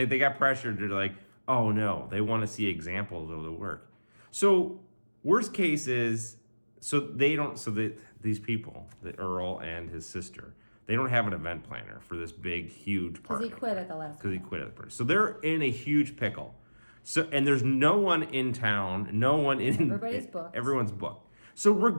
they got pressured to like, oh no, they want to see examples of the work. So worst case is, these people, the Earl and his sister, they don't have an event planner for this big, huge party. Because he quit at the last. Because he quit at the party. So they're in a huge pickle. So, and there's no one in town, no one in... Everybody's booked. Everyone's booked. So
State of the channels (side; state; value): both; inverted; correlation -1.00